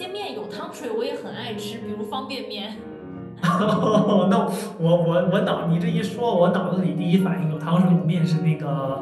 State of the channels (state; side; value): identical; both; correlation 1.00